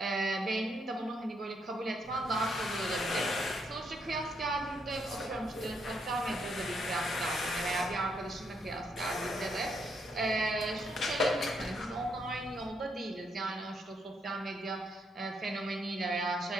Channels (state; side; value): normal; both; correlation 0.76